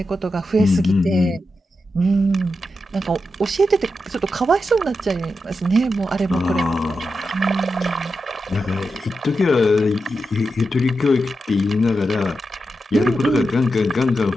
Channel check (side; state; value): both; normal; correlation 0.88